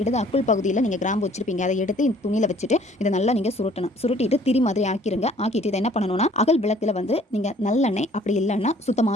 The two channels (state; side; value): normal; both; correlation 0.56